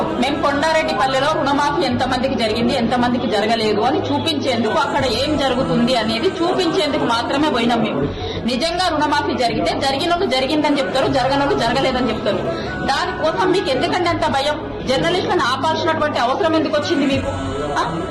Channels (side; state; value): both; identical; correlation 1.00